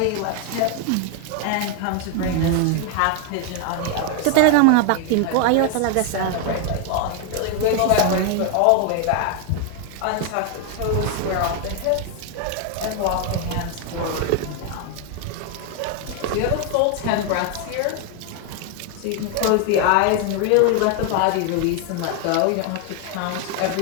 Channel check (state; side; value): different; both; correlation 0.00